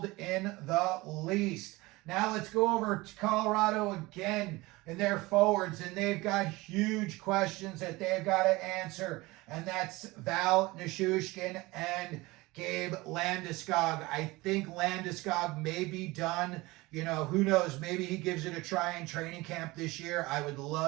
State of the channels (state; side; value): quieter; left; 21.4 dB